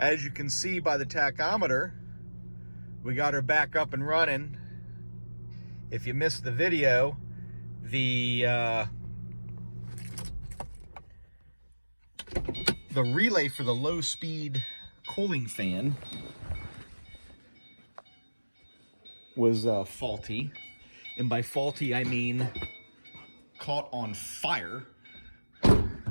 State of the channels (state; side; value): inverted; both; correlation -1.00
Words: you can see by the tachometer, we got her back up and running. If you missed the video, the relay for the low-speed cooling fan was faulty. And by faulty, I mean caught on fire.